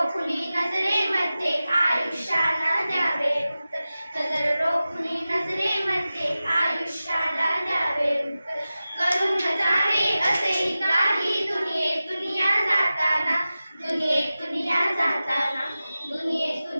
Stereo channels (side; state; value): both; inverted; correlation -0.95